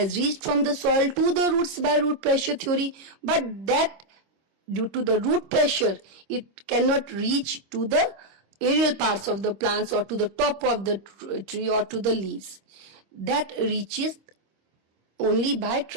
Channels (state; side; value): late; left; 26 ms